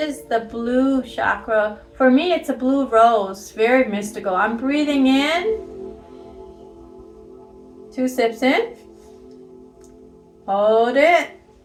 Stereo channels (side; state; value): both; identical; correlation 1.00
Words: the blue chakra. For me, it's a blue rose, very mystical. I'm breathing in, 2 sips in, hold it,